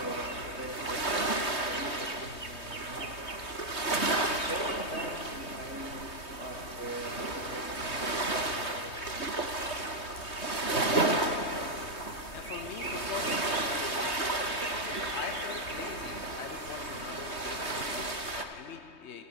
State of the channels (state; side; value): late; right; 3.2 ms